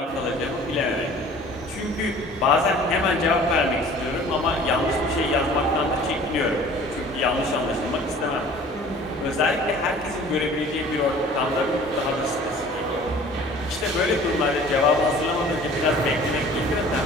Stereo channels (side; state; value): both; normal; correlation 0.48